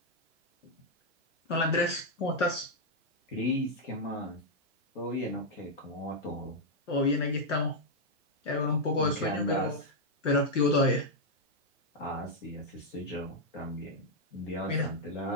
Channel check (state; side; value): normal; both; correlation -0.02